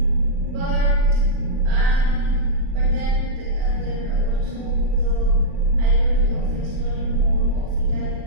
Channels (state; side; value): late; left; 40 ms